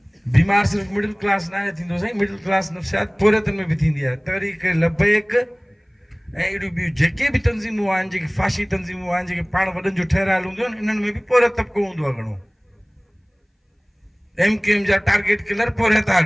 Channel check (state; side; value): identical; both; correlation 1.00